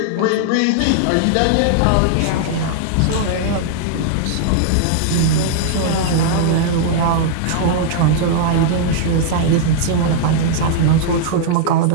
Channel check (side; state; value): both; different; correlation -0.01